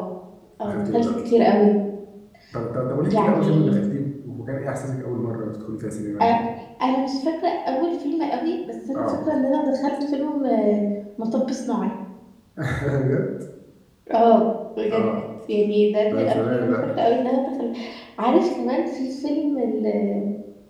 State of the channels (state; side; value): identical; both; correlation 1.00